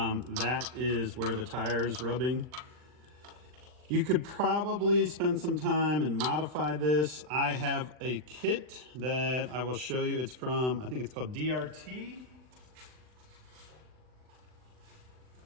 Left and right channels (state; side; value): late; left; 39 ms